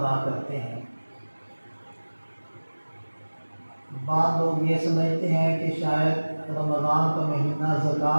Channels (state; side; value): inverted; both; correlation -1.00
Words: کرتے ہیں۔ بعض لوگ یہ سمجھتے ہیں کہ شاید رمضان کا مہینہ